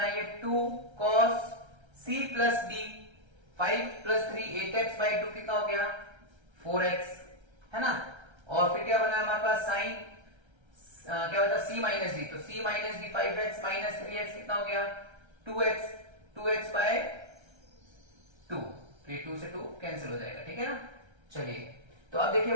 2 cos c plus D, 5 plus 3 8x by 2 कितना हो गया, 4x, है ना। और फिर क्या बना हमारे पास साइन, क्या होता है c माइनस डी, तो c minus D 5x minus 3x कितना हो गया, 2x, 2x बाय 2, तो ये 2 से 2 कैंसिल हो जाएगा, ठीक है ना। चलिए, तो अब देखिए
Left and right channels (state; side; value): late; left; 1.3 ms